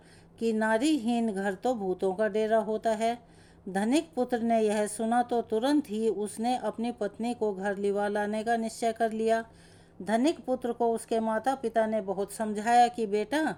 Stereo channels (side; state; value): both; identical; correlation 1.00